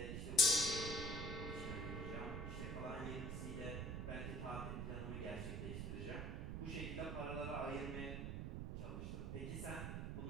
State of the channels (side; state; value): right; noise; rumble, 3 dB below the sound